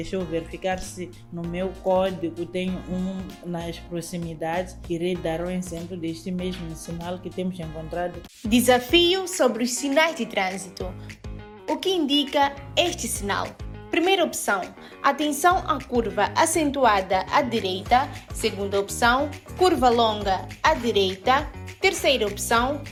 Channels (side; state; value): both; identical; correlation 1.00